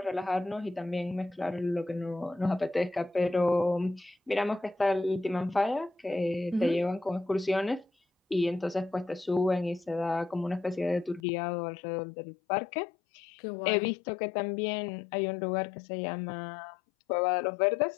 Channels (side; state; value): right; drops out; at 11.2 s